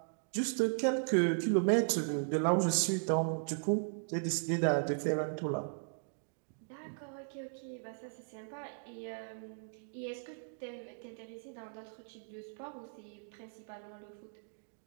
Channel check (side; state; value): left; silent; digital silence